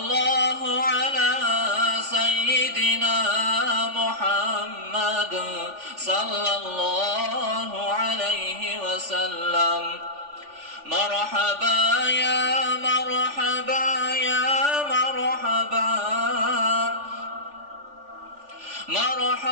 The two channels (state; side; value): late; left; 3.4 ms